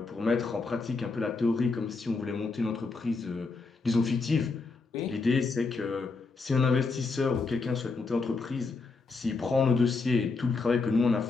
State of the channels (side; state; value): right; quieter; 4.1 dB